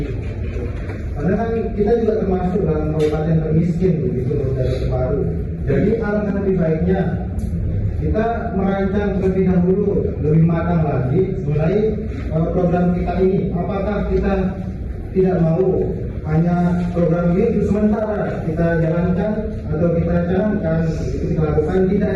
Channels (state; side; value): identical; both; correlation 1.00